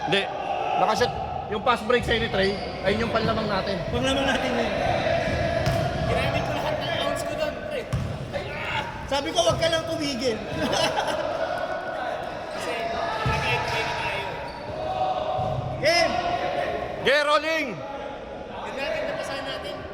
Hindi. Nakashot. Yung pass break sa Trey, ayun yung panlamang natin. Panglaman natin yun. Ginamit ko lahat ng ounce ko doon, pre. Sabi ko, wag ka lang tumigil. Kasi nag-explain na tayo. Game! Get rolling! Yung natin napasahan natin.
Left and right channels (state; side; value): identical; both; correlation 1.00